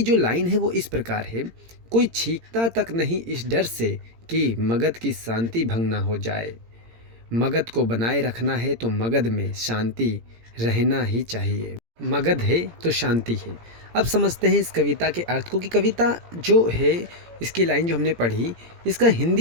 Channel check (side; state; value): left; late; 17 ms